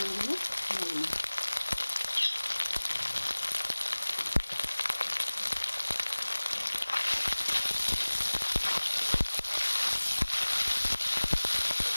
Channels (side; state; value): both; inverted; correlation -1.00